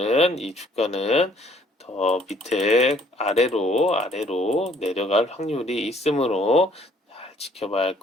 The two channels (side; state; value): both; normal; correlation 0.61